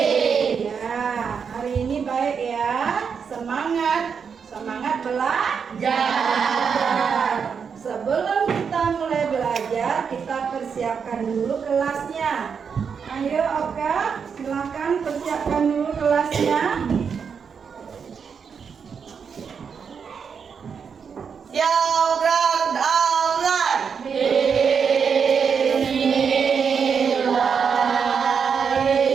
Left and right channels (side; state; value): left; quieter; 6.4 dB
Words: Ya, hari ini baik ya. Semangat belajar. Sebelum kita mulai belajar, kita persiapkan dulu kelasnya. Ayo Oka, silakan persiapkan dulu kelasnya. Program online.